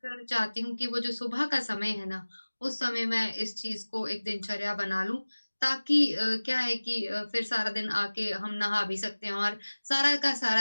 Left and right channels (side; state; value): both; inverted; correlation -1.00